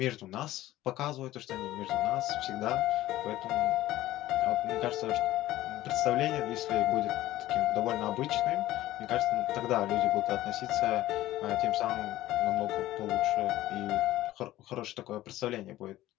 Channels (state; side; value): quieter; right; 15.4 dB